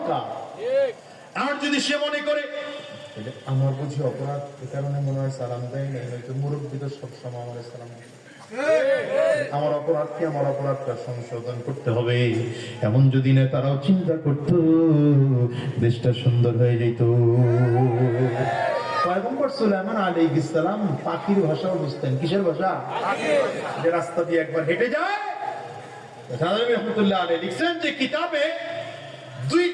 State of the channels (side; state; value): both; identical; correlation 1.00